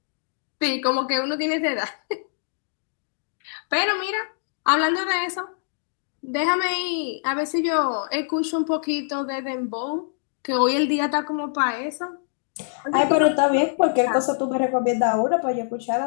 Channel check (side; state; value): right; silent; digital silence